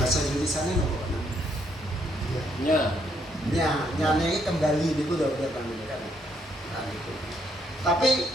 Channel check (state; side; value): normal; both; correlation 0.73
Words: Indonesianya nya ini kembali itu domir namanya kan. Nah, itu. Tapi